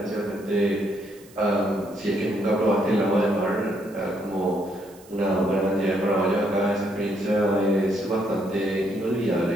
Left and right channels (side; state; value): right; noise; hiss, 25 dB below the sound